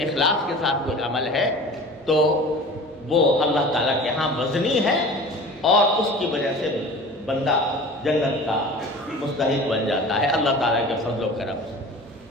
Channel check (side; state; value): both; normal; correlation 0.39